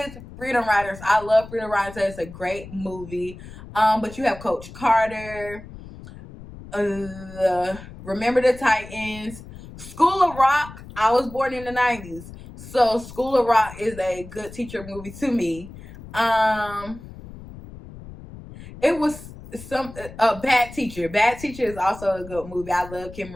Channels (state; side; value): noise; left; rumble, 15 dB below the sound